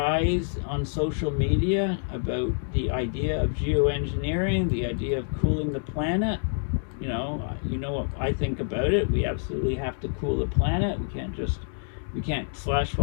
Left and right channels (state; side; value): silent; right; digital silence